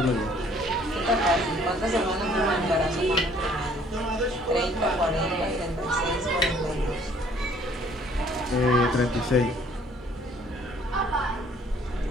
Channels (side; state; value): both; normal; correlation 0.59